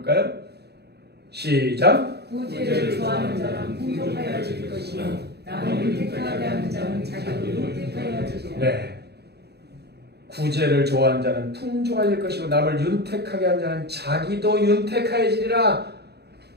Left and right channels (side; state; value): left; late; 0.48 ms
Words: 시작. 구제를 좋아하는 자는 풍족하여질 것이요 남을 윤택하게 하는 자는 자기도 윤택하여지리라. 네. 구제를 좋아하는 자는 풍족하여질 것이고 남을 윤택하게 하는 자는 자기도 윤택하여지리라.